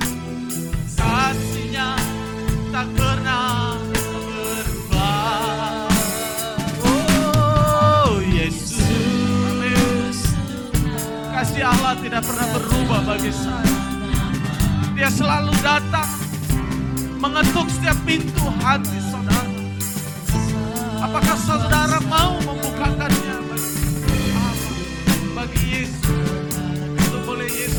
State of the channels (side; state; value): both; identical; correlation 1.00